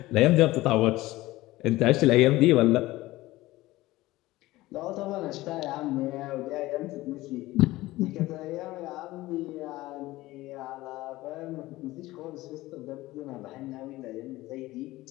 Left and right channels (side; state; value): right; quieter; 18.0 dB